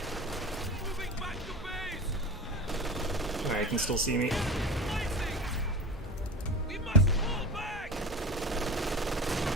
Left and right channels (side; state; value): both; normal; correlation 0.32